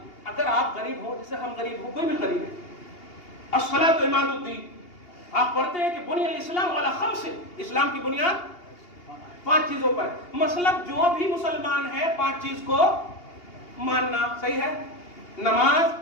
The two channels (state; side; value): late; right; 2.8 ms